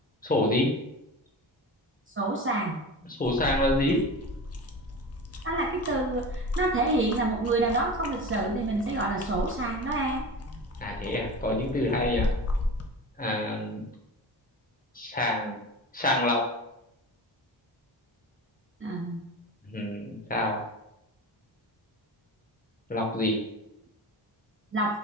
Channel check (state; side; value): normal; both; correlation 0.31